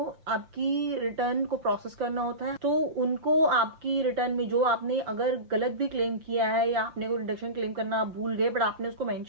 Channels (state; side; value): late; left; 6.2 ms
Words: आपकी रिटर्न को प्रोसेस करना होता है। तो उनको आपकी रिटर्न में जो आपने अगर गलत भी क्लेम किया है या आपने कोई डिडक्शन क्लेम करना आप भूल गए बट आपने उसको